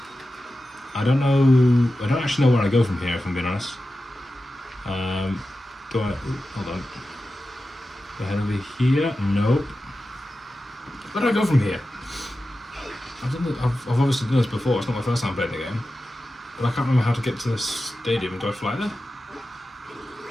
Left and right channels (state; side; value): normal; both; correlation 0.93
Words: don't know. I don't actually know where I go from here, if I'm being honest. Do I? Hold on. Do I head over here? Nope. Where do I go from here? I've obviously done this before. It's not my first time playing the game, but I can't remember how to get to the stadium. Do I fly there?